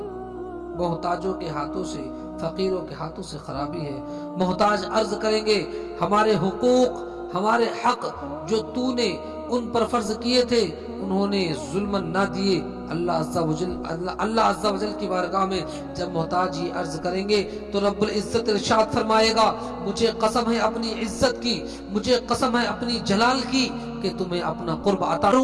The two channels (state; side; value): identical; both; correlation 1.00